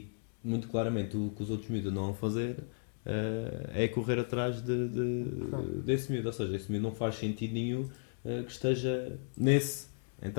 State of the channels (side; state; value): right; silent; digital silence